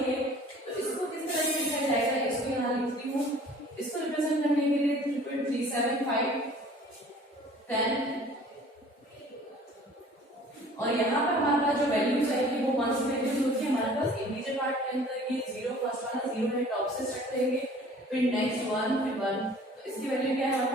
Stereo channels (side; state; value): both; normal; correlation 0.50